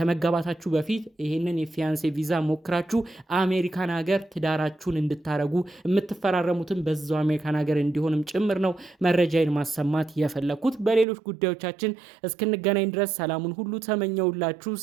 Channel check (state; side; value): drops out; left; at 11.1 s